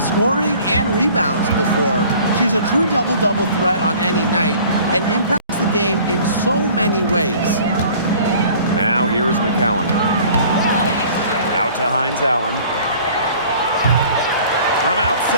scoring and rebounds before. She's a true double-double threat on any night and impacts the game in so many ways. Now here's McCowan. Out to Hines Allen. From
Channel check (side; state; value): both; inverted; correlation -0.50